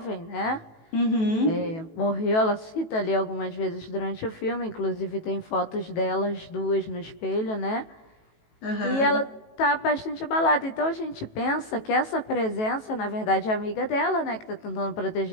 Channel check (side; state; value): right; late; 18 ms